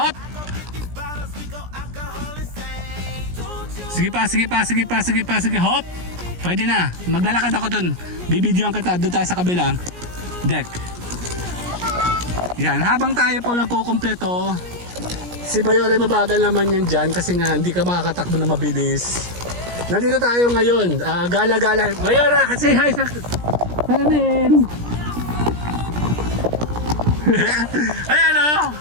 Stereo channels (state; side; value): late; left; 17 ms